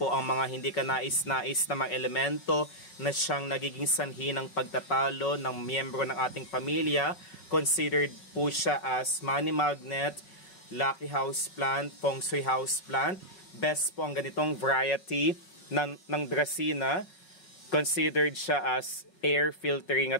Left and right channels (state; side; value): late; right; 5.4 ms